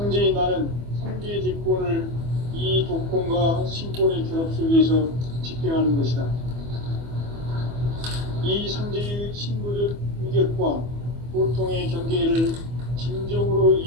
나는 상제의 뒷권을 이 독권과 신권의 결합 속에서 집행하는 것이다. 이 상제의 신고적 위격과 보통의 경계를 진정으로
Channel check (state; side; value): late; left; 24 ms